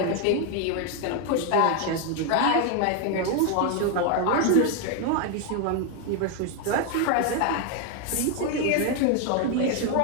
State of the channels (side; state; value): both; different; correlation 0.01